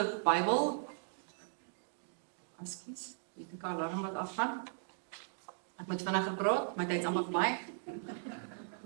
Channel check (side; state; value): left; silent; digital silence